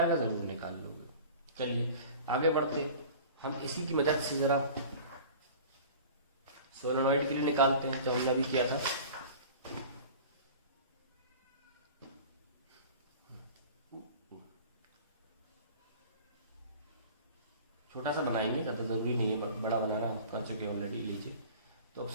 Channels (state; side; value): inverted; both; correlation -0.41